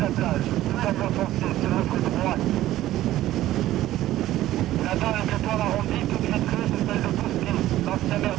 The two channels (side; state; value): left; quieter; 14.5 dB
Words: la plage, tout en bois foncé, sur votre droite. Là-bas, avec le toit arrondi, toute vitrée, c'est celle de Bousquet, l'ancien maire